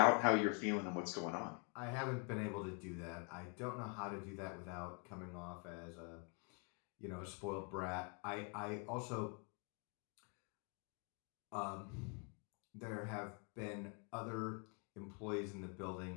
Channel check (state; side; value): quieter; right; 37.5 dB